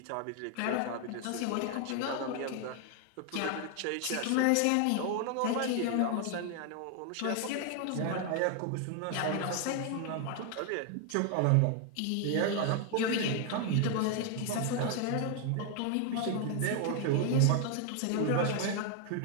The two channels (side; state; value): both; different; correlation 0.00